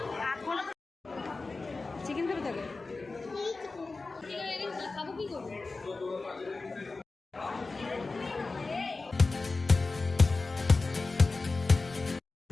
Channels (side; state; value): right; quieter; 3.7 dB